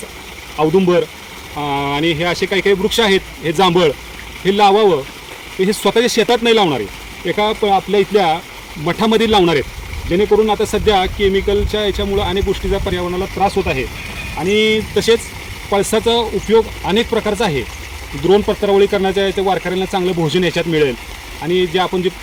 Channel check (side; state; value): both; identical; correlation 1.00